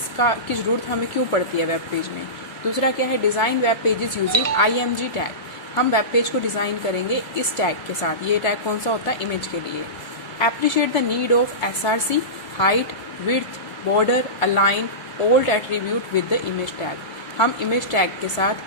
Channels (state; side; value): late; right; 1.3 ms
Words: की ज़रूरत हमें क्यों पड़ती है वेब पेज में। दूसरा क्या है, design web pages using IMG tag. हम वेब पेज को डिज़ाइन करेंगे इस टैग के साथ। ये टैग कौन सा होता है, इमेज के लिए। Appreciate the need of SRC, height, width, border, align, old attribute with the image tag. हम इमेज टैग के